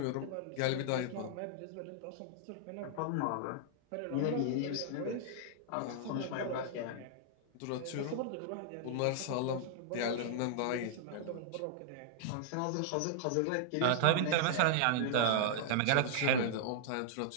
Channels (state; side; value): different; both; correlation -0.01